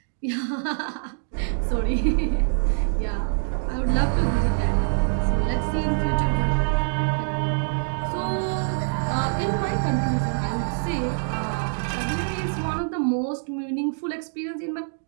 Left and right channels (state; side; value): silent; left; digital silence